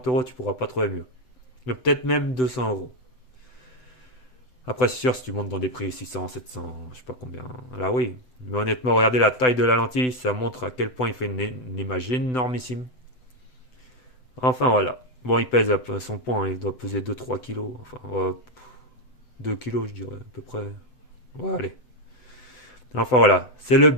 euros, tu pourras pas trouver mieux. Mais peut-être même 200 euros. Après, c'est sûr, si tu montes dans des prix 600, 700, je sais pas combien. Là, oui. Mais honnêtement, regardez la taille de la lentille, ça montre à quel point il fait une image énormissime. Enfin, voilà. Bon, il pèse à son point, hein, il doit peser 2-3 kilos. Enfin, ouais, 2 kilos, je dirais, à peu près. Ouais, allez. Enfin, voilà. C'est le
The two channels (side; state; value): right; late; 7.9 ms